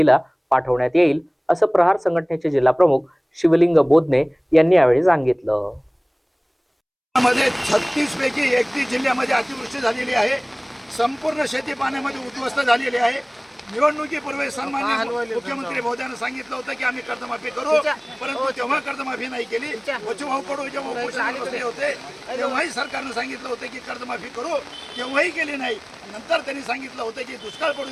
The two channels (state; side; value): identical; both; correlation 1.00